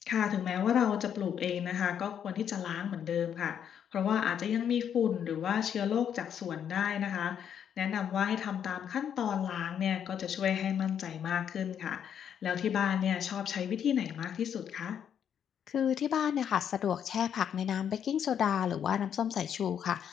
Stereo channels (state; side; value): quieter; right; 8.7 dB